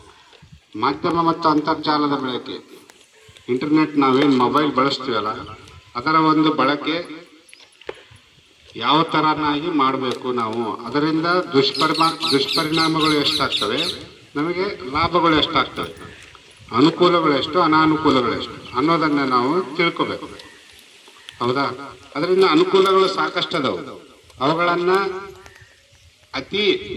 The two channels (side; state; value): both; identical; correlation 1.00